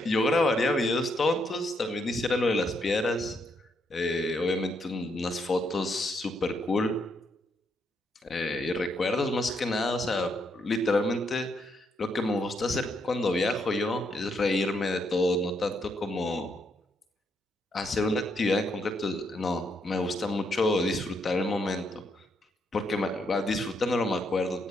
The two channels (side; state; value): both; normal; correlation 0.76